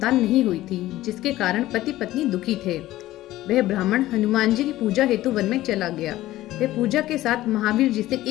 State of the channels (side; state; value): right; quieter; 15.7 dB